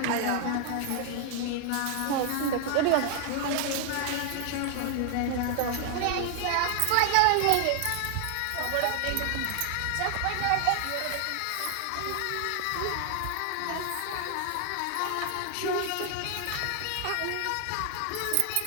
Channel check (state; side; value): different; both; correlation 0.00